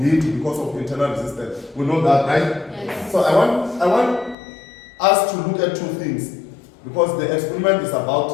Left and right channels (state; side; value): drops out; right; at 4.4 s